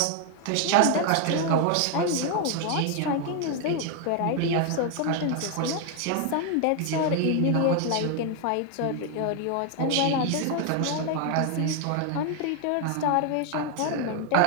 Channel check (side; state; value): both; different; correlation 0.01